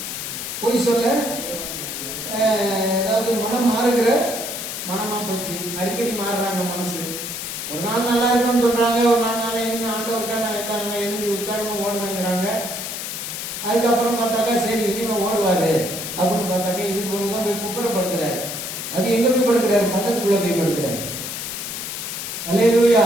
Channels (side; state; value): left; noise; hiss, 6 dB below the sound